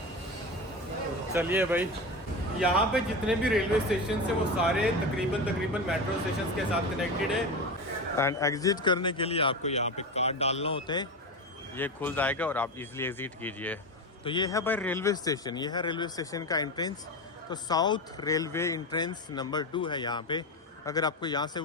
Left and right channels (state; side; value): normal; both; correlation 0.21